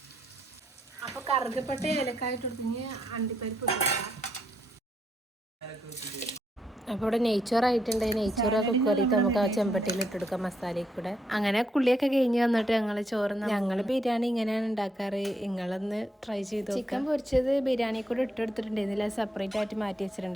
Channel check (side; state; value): both; normal; correlation 0.77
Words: അപ്പൊ കറുകപ്പെട്ട ഏലക്കായിട്ട് കൊടുത്ത് അണ്ടിപ്പരിപ്പ് ഇട്ടില്ല. അപ്പോൾ ഇവിടെ നെയ്ച്ചോറായിട്ടുണ്ട്. നെയ്ച്ചോറൊക്കെ കുക്കറിയിട്ട് നമുക്ക് ആ ചെമ്പട്ടിയിൽ ഇട്ടെടുക്കാം മസാലയിൽ കൂടെ. അങ്ങനെ കുള്ളിയൊക്കെ കഴിഞ്ഞ് വന്നിട്ട് ഞങ്ങൾ ബിരിയാണി ഇങ്ങനെയാണ് ഉണ്ടാക്കാറ്. നിങ്ങളൊന്ന് ട്രൈ ചെയ്തു. ചിക്കൻ പൊരിച്ചത് ബിരിയാണി കൂടെ ഇട്ടെടുത്തിട്ടുണ്ടായിരുന്നില്ല, സെപ്പറേറ്റ് ആയിട്ട് മാറ്റി